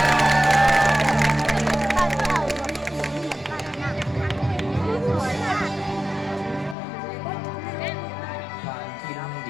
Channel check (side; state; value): right; drops out; at 6.8 s